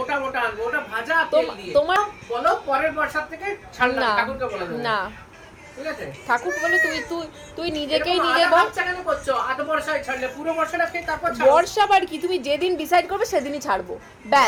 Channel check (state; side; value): identical; both; correlation 1.00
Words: মোটা আনবো। ওটা ভাজা তেল দিয়ে। তোমার বলো পরের বর্ষার থেকে ছাড়লাম, না ঠাকুরকে বলে দেবো। না, ঠিক আছে? ঠাকুর বলে তুই নিজেকেই এরকম নিজে আধা বল। বাচ্চা কেন করছো? আধ বর্ষায় ছাড়লে পুরো বর্ষাটা খেয়ে তারপর ছাড়ো। বর্ষা বার কি, তুমি যেদিন ডিসাইড করবে সেদিনই ছাড়বো,